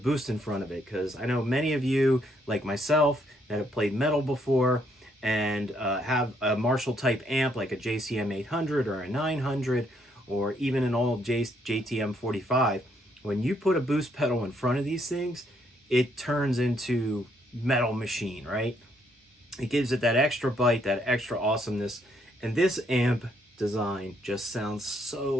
in front of it, because I know many of you, like myself, that have played metal before and have a Marshall type amp like a JCM 800 or a 900 or even an old JTM 45. When you put a boost pedal in front of these things, it turns into metal machine, right? It gives it that extra bite, that extra awesomeness. And this amp design just sounds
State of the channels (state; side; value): normal; both; correlation 0.72